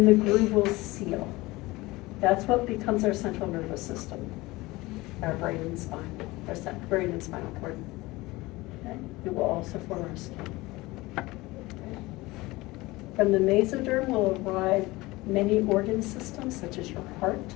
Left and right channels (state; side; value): quieter; right; 20.8 dB